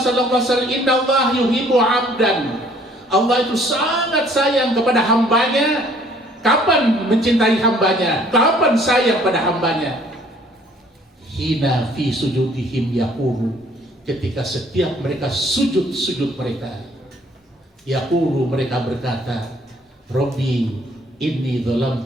SAW? Innallaha yuhibbu 'abdan. Allah itu sangat sayang kepada hambanya. Kapan mencintai hambanya? Kapan sayang pada hambanya? Hina fi sujudihim yaqulu. Ketika setiap mereka sujud mereka, yaqulu, mereka berkata, Rabbi inni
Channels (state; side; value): normal; both; correlation 0.59